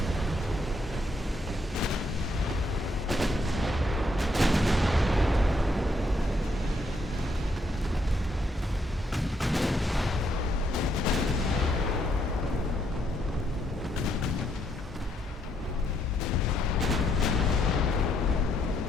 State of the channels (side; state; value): both; normal; correlation 0.74